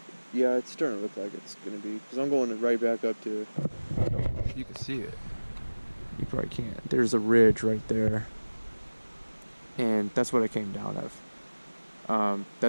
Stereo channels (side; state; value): both; inverted; correlation -1.00